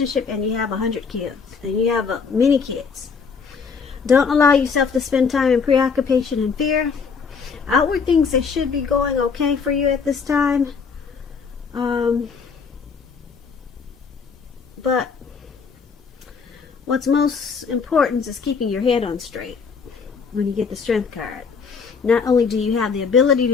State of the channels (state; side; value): quieter; right; 5.6 dB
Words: and you have 100 kids and you have many kids. Don't allow yourself to spend time in preoccupation and fear. Outward things that should be going okay for you at this time. But what's most important is keeping your head on straight when you get the Strength card. Not only do you have the ability